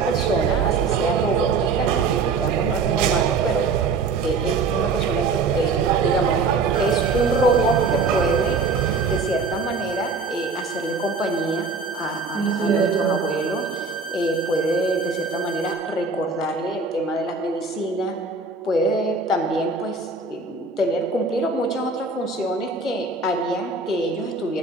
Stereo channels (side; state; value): left; quieter; 4.1 dB